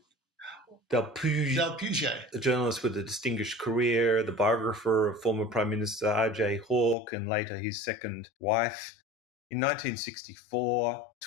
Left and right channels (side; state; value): right; drops out; at 7.0 s